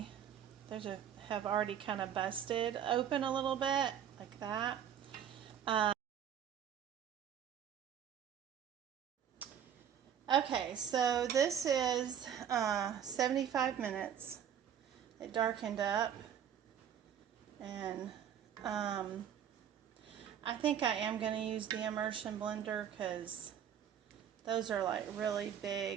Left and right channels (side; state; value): left; quieter; 9.1 dB